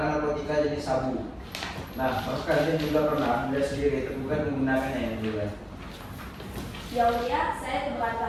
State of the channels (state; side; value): identical; both; correlation 1.00